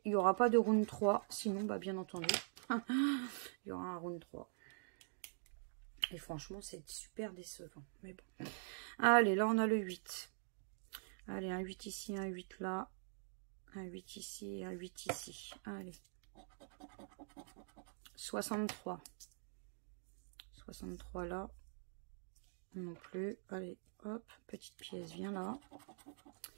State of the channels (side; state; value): left; silent; digital silence